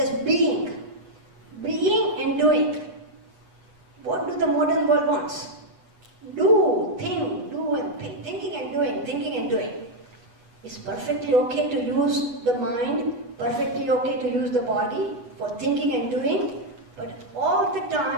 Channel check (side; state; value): left; late; 8.3 ms